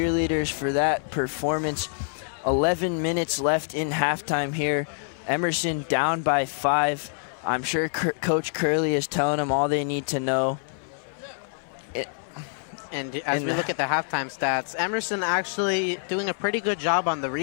for that performance. 11 minutes left in halftime here. Emerson down by 5. I'm sure Coach Curley is telling them all they need to know. And as we look at the halftime stats, Emerson actually doing a pretty good job on the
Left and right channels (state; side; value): silent; right; digital silence